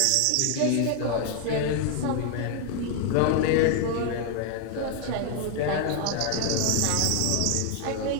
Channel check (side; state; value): both; different; correlation 0.00